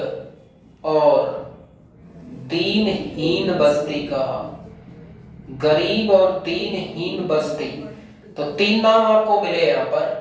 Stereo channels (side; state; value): both; identical; correlation 1.00